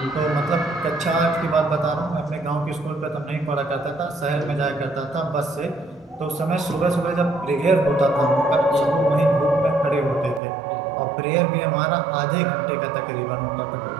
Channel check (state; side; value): drops out; left; at 10.4 s